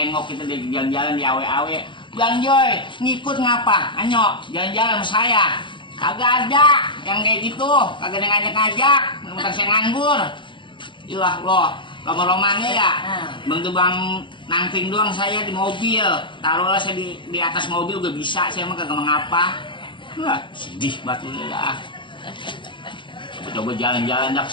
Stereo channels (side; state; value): right; late; 0.24 ms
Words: kita di jalan-jalan di awe-awe. Bang Joy, ngikut ngapa? Anyo, jalan-jalan sama saya. Kagak ada yang kayak gitu. Kagak ada ngajak-ngajak. Mentang saya nganggur. Ilah loh, lama-lamanya ya. Bang tuh bang nangping doang saya di mobil. Taruhlah saya di atas mobil gak bisa. Saya mah kagak mengapa. Wah, sedih batu dah. Coba jalan-jalan dah ke